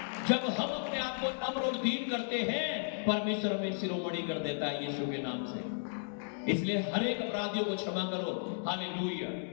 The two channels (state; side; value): silent; right; 55 dB below the other